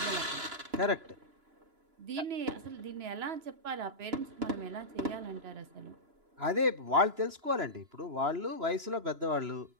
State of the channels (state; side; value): late; left; 2.9 ms